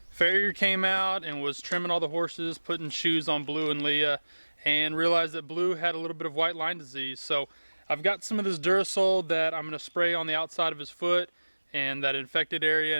Farrier came out and was trimming all the horses, putting shoes on Blue and Leah, and realized that Blue had a little bit of white line disease. So I've got some of this Durasol that I'm going to spray on the outside of his foot and that infected area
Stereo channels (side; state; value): both; inverted; correlation -1.00